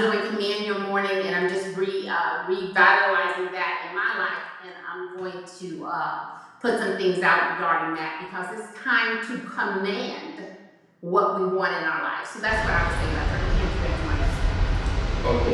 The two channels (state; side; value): identical; both; correlation 1.00